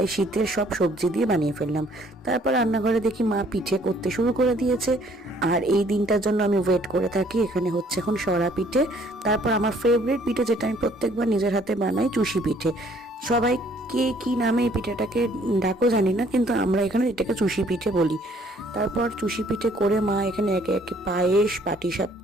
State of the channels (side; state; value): both; normal; correlation 0.61